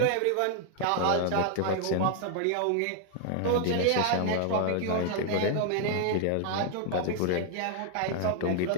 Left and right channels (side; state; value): both; different; correlation 0.00